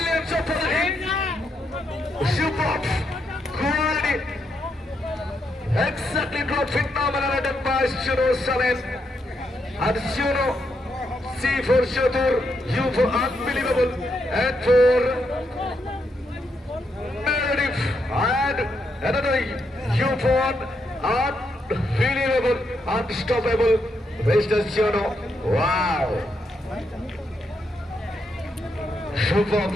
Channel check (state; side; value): normal; both; correlation 0.80